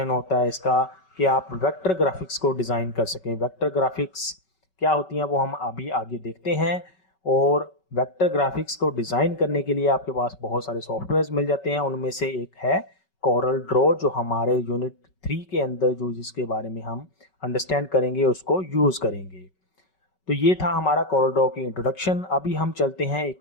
होता है इसका कि आप वेक्टर ग्राफिक्स को डिज़ाइन कर सकें। वेक्टर ग्राफिक्स क्या होती हैं वो हम अभी आगे देखते हैं। और वेक्टर ग्राफिक्स को डिज़ाइन करने के लिए आपके पास बहुत सारे सॉफ्टवेयर्स मिल जाते हैं, उनमें से एक है कोरल ड्रॉ, जो हमारे यूनिट 3 के अंदर जो जिसके बारे में हम अंडरस्टैंड करेंगे उसको यूज़ करेंगे। तो ये था हमारा कोरल ड्रॉ की इंट्रोडक्शन। अभी हम चलते हैं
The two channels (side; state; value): right; late; 5.3 ms